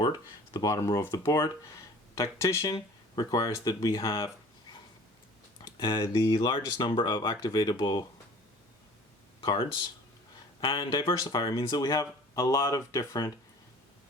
the bottom row of the board. Tactician requires that we have the largest number of activatable cards. And Diversifier means that we have a lot of different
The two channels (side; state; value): both; normal; correlation 0.47